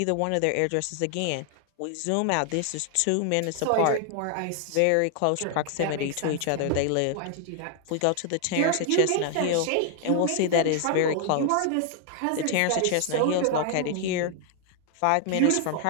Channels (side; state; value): both; different; correlation 0.00